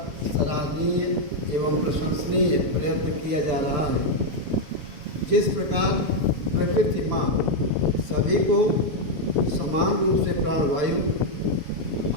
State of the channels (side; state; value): left; late; 7.2 ms